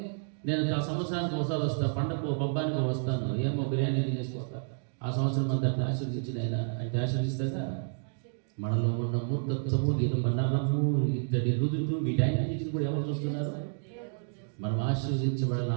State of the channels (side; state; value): left; silent; digital silence